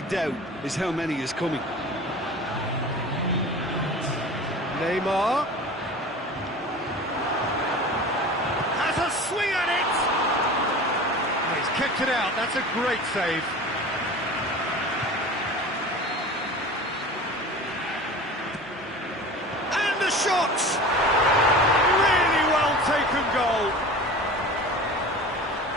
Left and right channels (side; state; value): both; normal; correlation 0.37